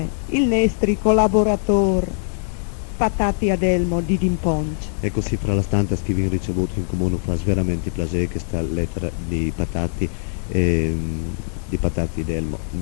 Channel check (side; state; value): right; silent; digital silence